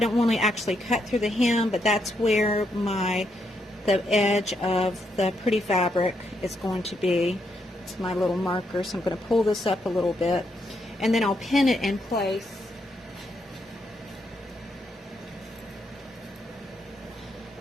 don't want to actually cut through the hem, but that's where the edge of the pretty fabric is going to be. It's my little marker, so I'm going to pull this up a little bit, and then I'll pin it in place.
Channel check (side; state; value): both; normal; correlation 0.78